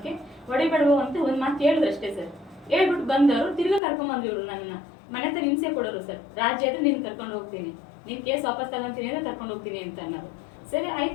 ಹೊಡಿಬೇಡವು ಅಂತ ಒಂದ್ ಮಾತು ಹೇಳಿದ್ರು ಅಷ್ಟೇ ಸರ್. ಹೇಳ್ಬಿಟ್ಟು ಬಂದವರು ತಿರ್ಗಾ ಕರ್ಕೊಂಡ್ಬಂದ್ರು ಇವ್ರು ನನ್ನ ಮನೆ ಹತ್ರ ಹಿಂಸೆ ಕೊಡೋರು ಸರ್. ರಾಜ್ಯ ಆದ್ರೆ ನೀನ್ ಕರ್ಕೊಂಡು ಹೋಗ್ತೀನಿ, ನೀನ್ ಕೇಸ್ ವಾಪಸ್ ತಗೊಂತೀನಿ ಅಂದ್ರೆ ಕರ್ಕೊಂಡು ಹೋಗ್ತೀನಿ ಅಂತ ಅನ್ನೋದು. ಸರಿ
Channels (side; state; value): right; drops out; at 3.8 s